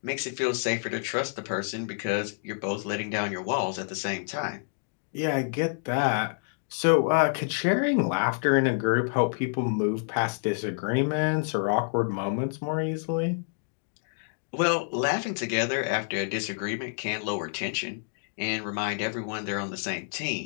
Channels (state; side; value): silent; right; digital silence